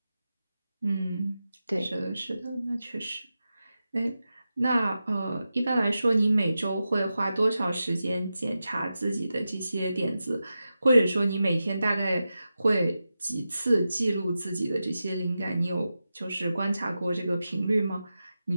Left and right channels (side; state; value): both; inverted; correlation -0.92